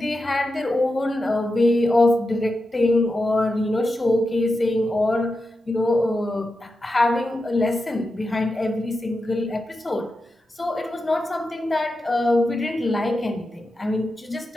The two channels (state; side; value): normal; both; correlation 0.89